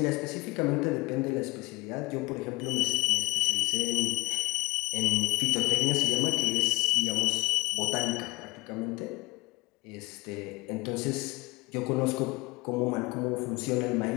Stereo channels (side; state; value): right; quieter; 22.3 dB